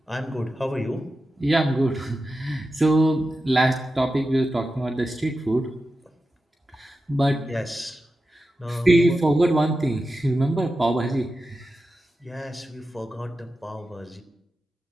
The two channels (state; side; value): normal; both; correlation 0.92